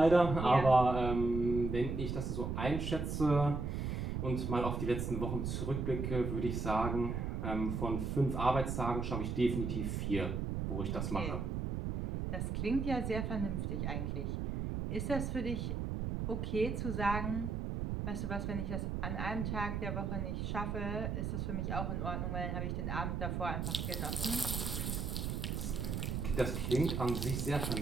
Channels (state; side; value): noise; right; rumble, 2 dB below the sound